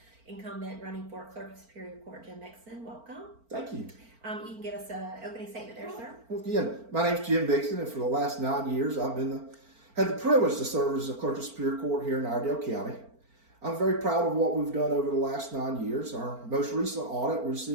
incumbent running for Clerk of Superior Court, Jim Mixson. Welcome. Thank you. You can give us an opening statement there, sir. Well, again, my name's Jim Mixson, and for the last 9 years, I've had the privilege to serve as the Clerk of Superior Court here in Iredell County. I'm very proud of what we've done over the last 9 years. Our most recent audit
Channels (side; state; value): left; late; 4.4 ms